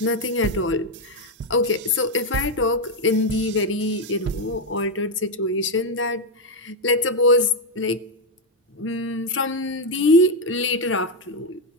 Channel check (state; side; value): normal; both; correlation 0.04